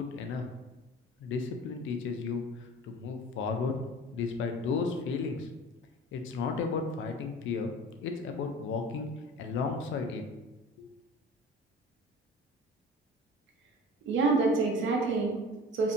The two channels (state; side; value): normal; both; correlation 0.40